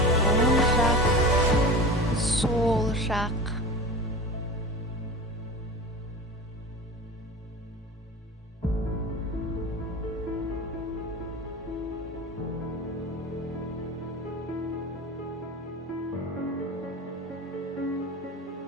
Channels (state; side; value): normal; both; correlation 0.32